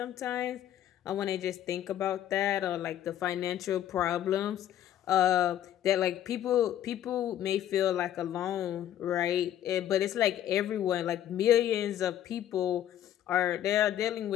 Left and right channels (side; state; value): right; quieter; 11.4 dB